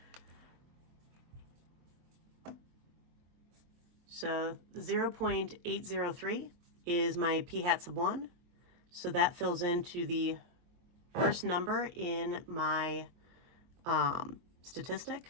So 0.803 is my P hat sub 1. So that fills into the first number in my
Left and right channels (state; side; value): late; left; 23 ms